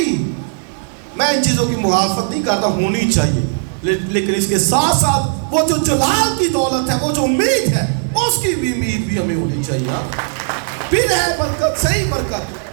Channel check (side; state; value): left; silent; digital silence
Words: میں ان چیزوں کی مخالفت نہیں کرتا، ہونی چاہیے، لیکن اس کے ساتھ ساتھ وہ جو جلال کی دولت ہے، وہ جو امید ہے، اس کی بھی امید بھی ہمیں ہونی چاہیے. پھر ہے برکت، صحیح